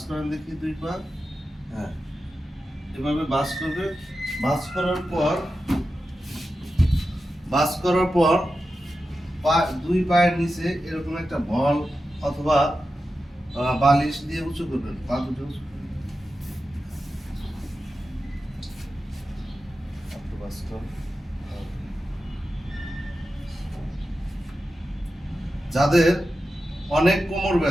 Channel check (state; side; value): normal; both; correlation 0.91